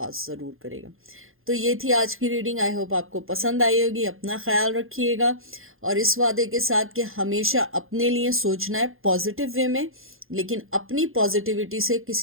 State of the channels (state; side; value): late; left; 0.60 ms